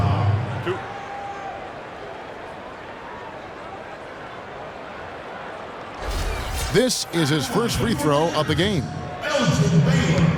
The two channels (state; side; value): identical; both; correlation 1.00